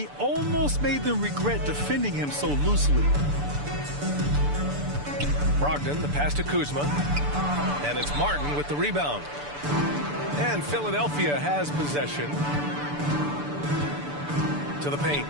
almost made them regret defending him so loosely. Brogdon, the pass to Kuzma. And it's Martin with the rebound. And Philadelphia has possession. To the paint.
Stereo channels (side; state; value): left; late; 6.9 ms